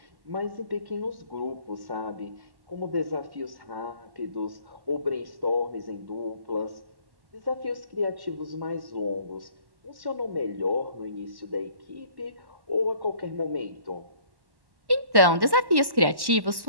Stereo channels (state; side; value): late; left; 1.1 ms